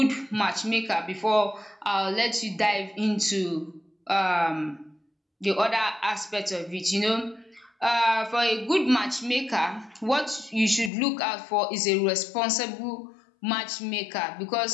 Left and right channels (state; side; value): drops out; right; at 10.9 s